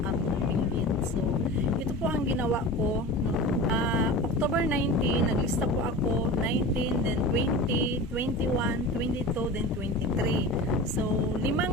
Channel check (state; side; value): normal; both; correlation 0.33